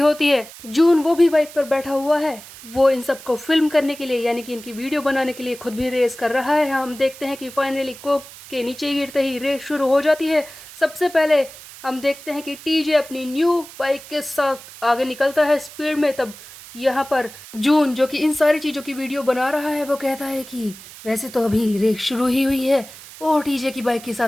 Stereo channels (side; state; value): right; noise; hiss, 17 dB below the sound